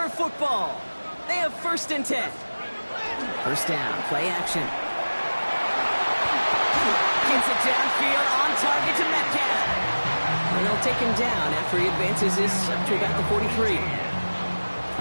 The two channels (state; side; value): inverted; both; correlation -1.00